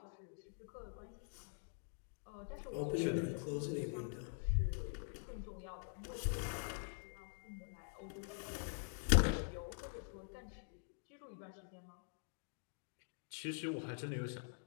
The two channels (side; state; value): right; silent; digital silence